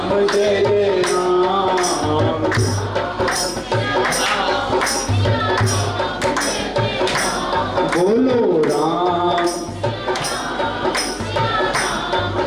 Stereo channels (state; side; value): identical; both; correlation 1.00